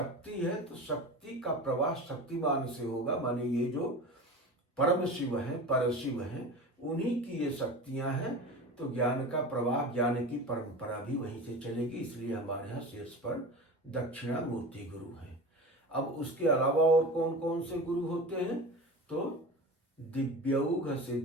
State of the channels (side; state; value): both; normal; correlation 0.31